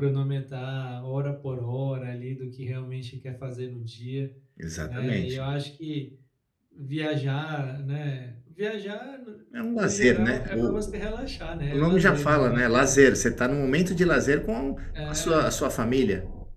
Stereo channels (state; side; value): identical; both; correlation 1.00